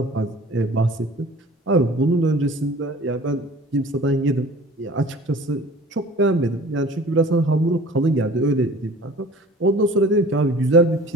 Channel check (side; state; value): both; normal; correlation 0.45